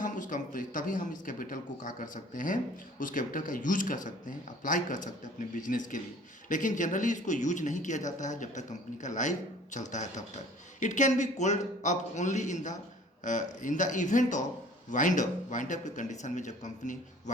इस कैपिटल को क्या कर सकते हैं, उस कैपिटल का यूज कर सकते हैं, अप्लाई कर सकते हैं अपने बिजनेस के लिए। लेकिन जनरली इसको यूज नहीं किया जाता है जब तक कंपनी का लाइफ चलता है तब तक। It can be called up only in the event of wind up के कंडीशन में, जब कंपनी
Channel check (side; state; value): both; normal; correlation 0.50